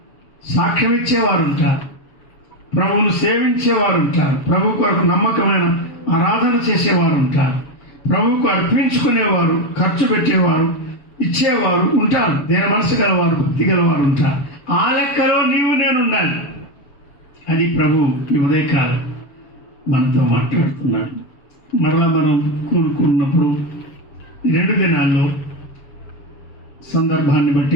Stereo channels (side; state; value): right; late; 7.2 ms